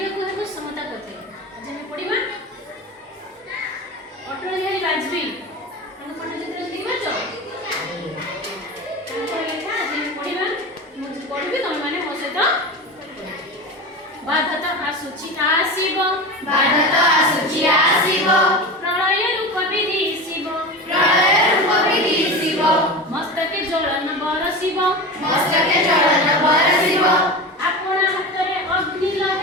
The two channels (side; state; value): both; normal; correlation 0.27